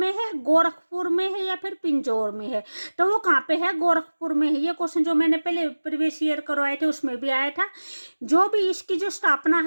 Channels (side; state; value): both; inverted; correlation -1.00